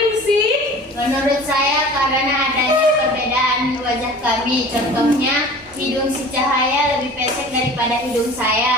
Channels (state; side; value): normal; both; correlation 0.42